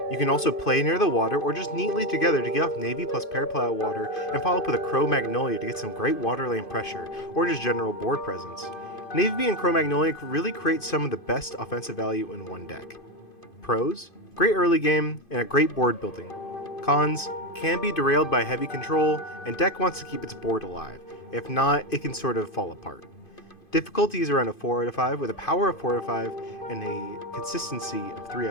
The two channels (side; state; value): right; late; 2.5 ms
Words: You can also play near the water or just neatly together to get off Navy plus Paraplow water and follow up with a Crow Magnolia to get some great water lane pressure or just general board presence. Navy and Crow Magnolia really create some of the best offensive value in one deck. Pros: great early game and a great board building. Cons: can be derailed by heavy control and deck wants to keep its board alive. If not, it can sort of fall apart. Difficulty is around a 4 out of 5 with a power of 4 out of 5 and a consistency of 3